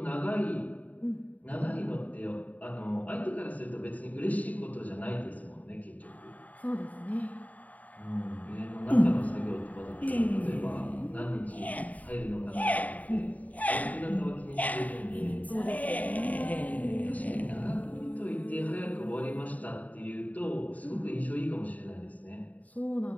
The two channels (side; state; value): right; late; 0.073 ms